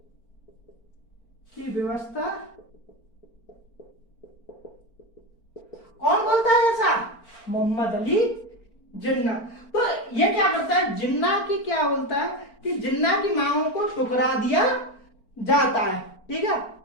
की व्यवस्था कौन बोलता है ऐसा? मोहम्मद अली जिन्ना। तो ये क्या करता है, जिन्ना की क्या बोलता है कि जिन्ना की मांगों को ठुकरा दिया जाता है, ठीक है।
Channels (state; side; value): late; right; 4.4 ms